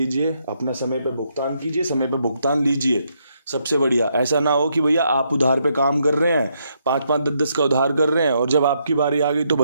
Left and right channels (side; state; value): both; inverted; correlation -0.76